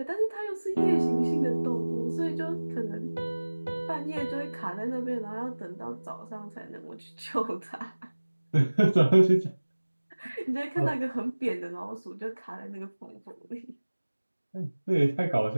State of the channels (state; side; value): inverted; both; correlation -1.00